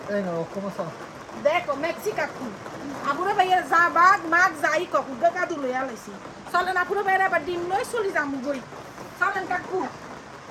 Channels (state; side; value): identical; both; correlation 1.00